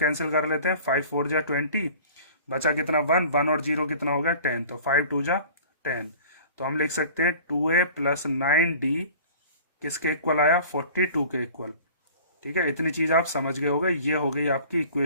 कर लेते हैं, 5 4 जा 20, बचा कितना 1, 1 और 0 कितना हो गया 10, तो 5 2 जा 10, तो हम लिख सकते हैं 2a प्लस 9d किसके इक्वल आया 42 के इक्वल। ठीक है, इतनी चीज आप समझ गए होगे। ये हो गई आपकी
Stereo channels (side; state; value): both; inverted; correlation -0.45